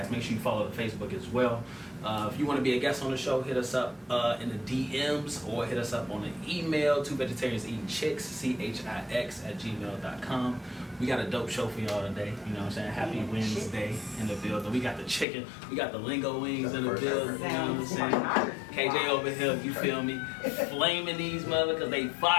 Make sure you follow the Facebook as well. If you want to be a guest on the show, hit us up in the DMs or hit us up on the email, 2VegetariansEatingChicks, CHIX@gmail.com. We got a dope show for y'all today. You know what I'm saying? Happy Wednesday in the building. We got the chicken. We got the lingo wings in the building. You know what I'm saying? KJ over here, you feel me? Flaming these mother because they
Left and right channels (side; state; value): right; drops out; at 15.2 s